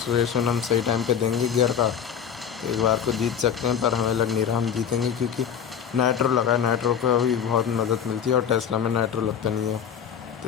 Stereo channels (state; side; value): quieter; right; 8.2 dB